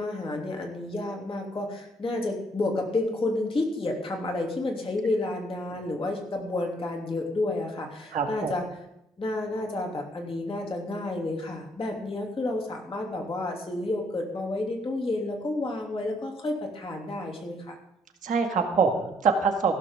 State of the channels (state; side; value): normal; both; correlation 0.67